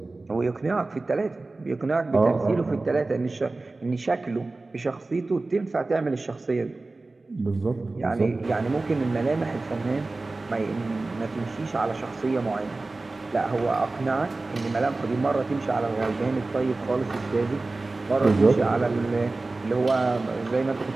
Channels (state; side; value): quieter; left; 3.3 dB